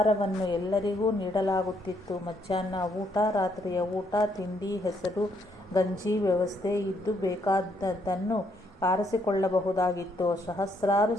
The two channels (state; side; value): normal; both; correlation 0.72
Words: ಎಲ್ಲರಿಗೂ ನೀಡಲಾಗುತ್ತಿತ್ತು. ಮಧ್ಯಾಹ್ನ ಊಟ, ರಾತ್ರಿಯ ಊಟ, ತಿಂಡಿ, ಹೆಸರು ಗಂಜಿ ವ್ಯವಸ್ಥೆ ಇದ್ದು ಬೇಕಾದದ್ದನ್ನು ಆರಿಸಿಕೊಳ್ಳಬಹುದಾಗಿತ್ತು. ಸಹಸ್ರಾರು